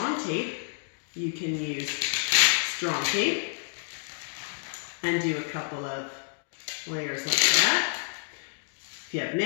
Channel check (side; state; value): right; silent; 59 dB below the other